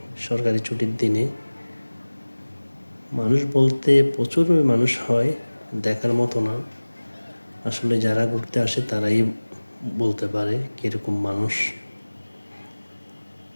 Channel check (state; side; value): inverted; both; correlation -1.00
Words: সরকারি ছুটির দিনে মানুষ বলতে প্রচুর মানুষ হয়, দেখার মতো না। আসলে যারা ঘুরতে আসে তারাই বলতে পারে কীরকম মানুষ।